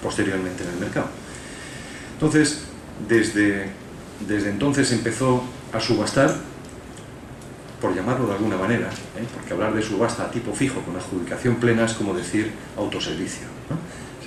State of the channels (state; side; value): identical; both; correlation 1.00